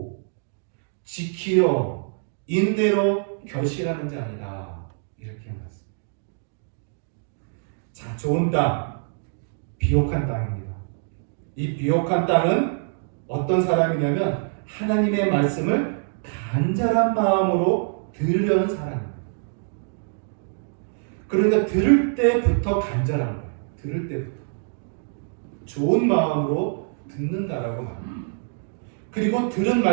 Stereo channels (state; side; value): silent; left; 62 dB below the other